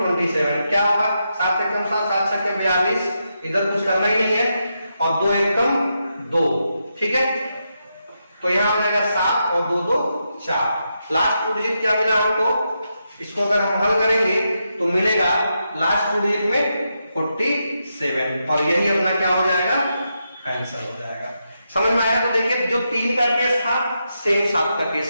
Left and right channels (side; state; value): both; inverted; correlation -0.84